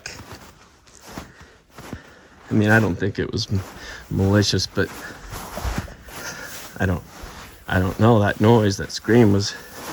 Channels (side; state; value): both; identical; correlation 1.00